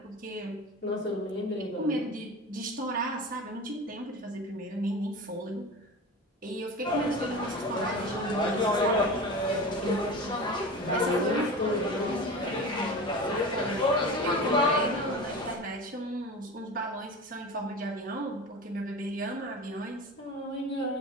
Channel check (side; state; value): both; normal; correlation 0.31